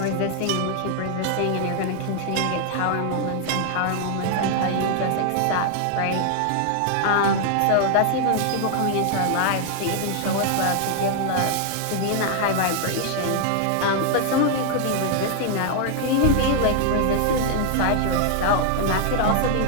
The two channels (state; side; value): different; both; correlation 0.00